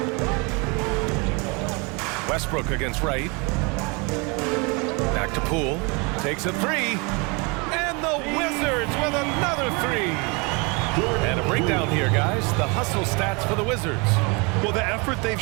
Westbrook against Wright. Back to Poole. Takes a 3. And the Wizards with another 3. And a breakdown here, guys. The hustle stats for the Wizards. Well, the effort they've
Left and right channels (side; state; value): left; quieter; 29.7 dB